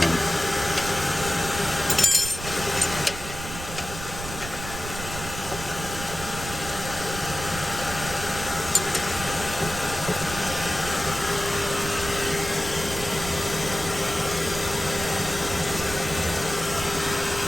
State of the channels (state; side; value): noise; right; rumble, 9 dB below the sound